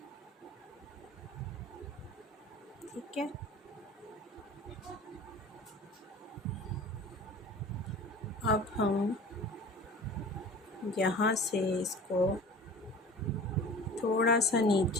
ठीक है। अब हम यहाँ से इसको थोड़ा सा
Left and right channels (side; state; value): both; normal; correlation 0.40